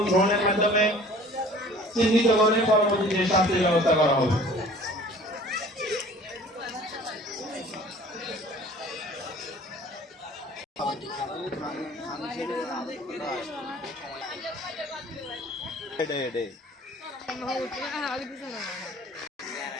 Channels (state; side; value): normal; both; correlation 0.48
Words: ড্রোনের মাধ্যমে চিহ্নিত করে পরবর্তীতে শাস্তির ব্যবস্থা করা হবে।